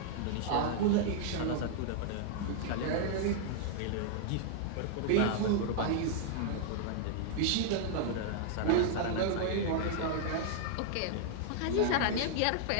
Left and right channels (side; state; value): both; different; correlation -0.01